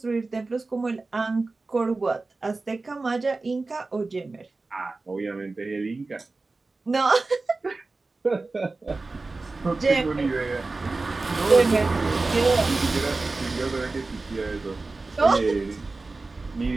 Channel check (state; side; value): quieter; left; 3.5 dB